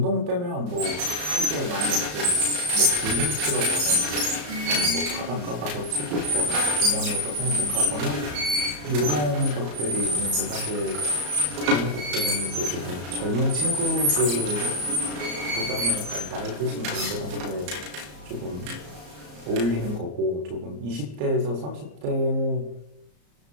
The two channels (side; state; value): left; late; 34 ms